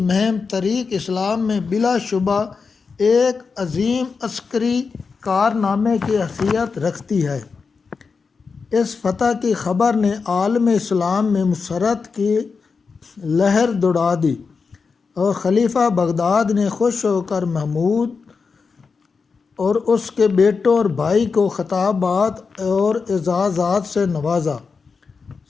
طریق اسلام میں بلا شبہ ایک عظیم عسکری کارنامے کی حیثیت رکھتی ہے۔ اس فتح کی خبر نے عالم اسلام میں مسرت کی لہر دوڑا دی اور خلیفہ بغداد نے خوش ہو کر محمود اور اس کے بیٹوں اور بھائی کو خطابات اور اعزازات سے نوازا۔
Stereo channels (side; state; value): right; quieter; 5.0 dB